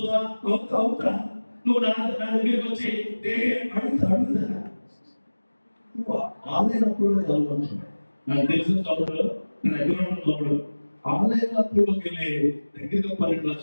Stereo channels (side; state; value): both; inverted; correlation -1.00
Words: అవుతా. నువ్వు నా దగ్గరికి వచ్చి అడుగుతా. నువ్వు ఆన్లైన్ అప్పుడు చదువుకుంటున్నావు. నాకు తెలిసిన చదువులు నేను దగ్గర ఉన్నప్పుడు ఆన్లైన్ అప్పుడుకి వెళ్ళి దగ్గరగా 12